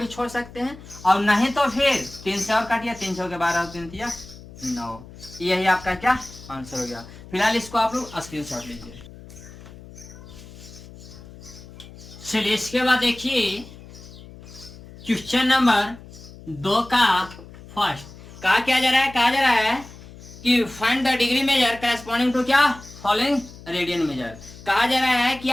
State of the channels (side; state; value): left; noise; hum, 18 dB below the sound